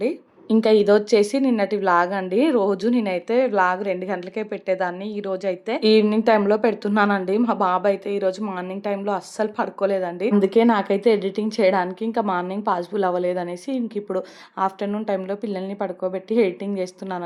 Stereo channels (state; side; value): identical; both; correlation 1.00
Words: ఇంకా ఇదొచ్చేసి నిన్నటి వ్లాగ్ అండి. రోజు నేనైతే వ్లాగ్ 2 గంటలకే పెట్టేదాన్ని. ఈరోజు అయితే ఈవినింగ్ టైంలో పెడుతున్నానండి. మా బాబు అయితే ఈరోజు మార్నింగ్ టైంలో అస్సలు పడుకోలేదండి. అందుకే నాకైతే ఎడిటింగ్ చేయడానికి ఇంకా మార్నింగ్ పాసిబుల్ అవ్వలేదనేసి ఇంక ఇప్పుడు ఆఫ్టర్నూన్ టైంలో పిల్లల్ని పడుకోబెట్టి ఎడిటింగ్